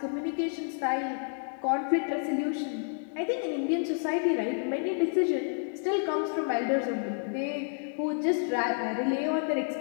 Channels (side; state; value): right; silent; 58 dB below the other